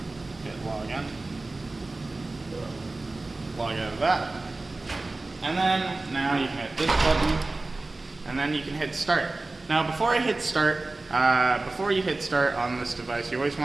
hit log in, log out of that, and then now you can hit this button, and then you can hit start. Now before you hit start on this device, you always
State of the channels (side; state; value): left; quieter; 3.2 dB